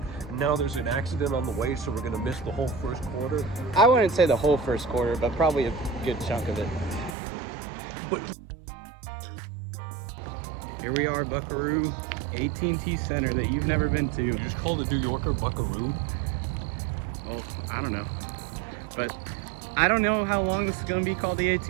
And now there's an accident on the way, so we're going to miss the whole first quarter. I wouldn't say the whole first quarter, but probably a good chunk of it. But Here we are, Buckaroo, AT&T Center that you've never been to. You just called a New Yorker Buckaroo? Well, I don't know. but I don't know how long this is going to be called the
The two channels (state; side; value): drops out; left; at 7.2 s